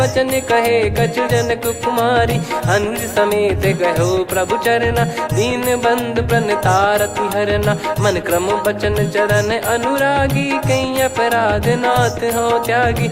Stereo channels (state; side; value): identical; both; correlation 1.00